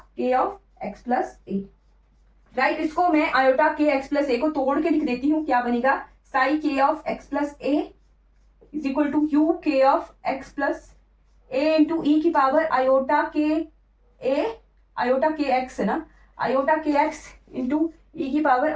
k of x plus a, right. इसको मैं आयोटा के एक्स प्लस ए को तोड़ के लिख देती हूँ, क्या बनेगा, psi k of x plus a is equal to u k of x plus a into e की पावर आयोटा के ए, आयोटा के एक्स है ना, आयोटा के एक्स इंटू ई की पावर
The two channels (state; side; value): identical; both; correlation 1.00